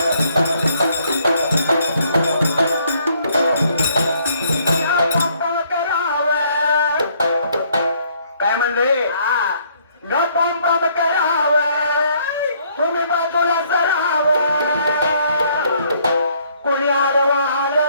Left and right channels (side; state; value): both; inverted; correlation -0.66